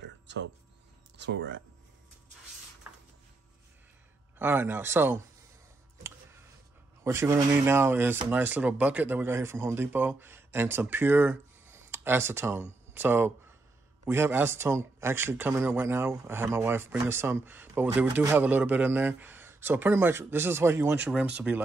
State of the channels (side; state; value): left; quieter; 3.1 dB